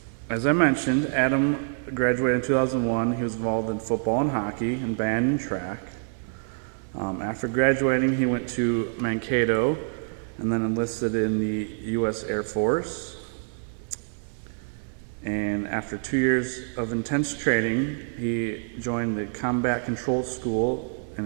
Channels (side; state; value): left; silent; digital silence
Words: As I mentioned, Adam graduated in 2001. He was involved in football and hockey, and band and track. After graduating, he went to Mankato and then enlisted in the U.S. Air Force. And after 2 years of intense training, he joined the Combat Control School